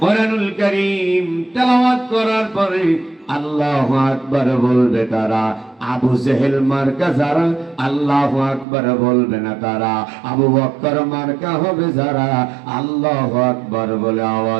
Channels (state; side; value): drops out; left; at 8.7 s